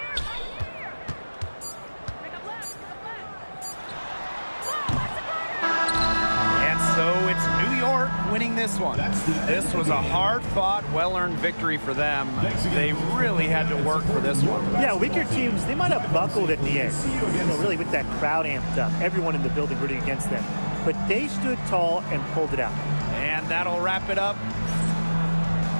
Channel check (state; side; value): inverted; both; correlation -1.00